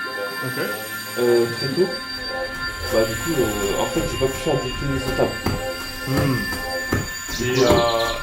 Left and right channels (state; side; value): identical; both; correlation 1.00